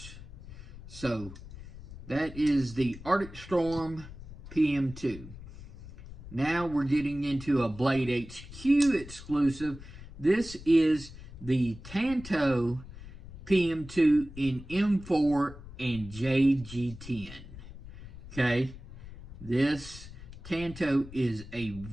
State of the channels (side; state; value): left; noise; rumble, 14 dB below the sound